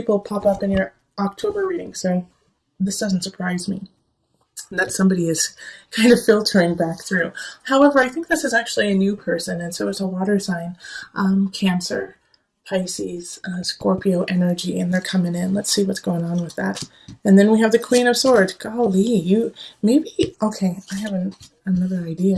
pop up in your October reading, so this doesn't surprise me that somebody is kind of filtering back through. However, I think this is actually a new person, and so it's a water sign, Cancer, Pisces, Scorpio energy, and they're coming in. Let's see what's going on with that. And then we have the Queen of Swords. Golly, you maybe, okay, I have another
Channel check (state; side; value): identical; both; correlation 1.00